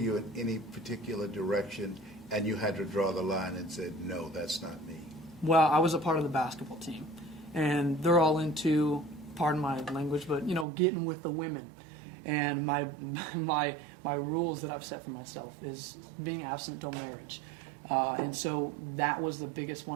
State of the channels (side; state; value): left; drops out; at 10.7 s